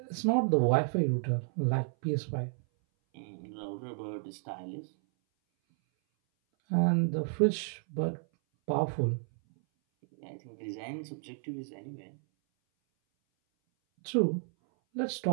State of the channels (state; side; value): silent; left; 56 dB below the other